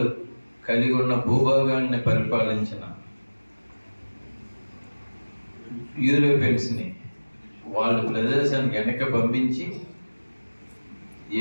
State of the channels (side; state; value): both; inverted; correlation -1.00